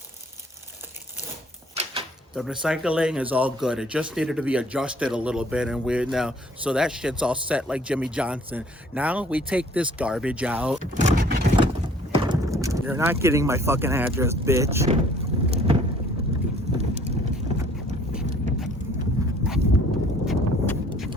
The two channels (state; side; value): normal; both; correlation 0.56